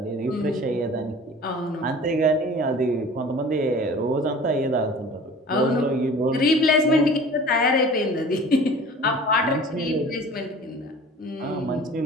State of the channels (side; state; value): both; normal; correlation 0.43